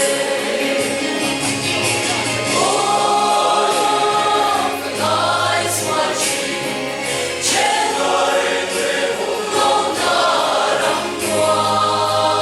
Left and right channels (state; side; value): identical; both; correlation 1.00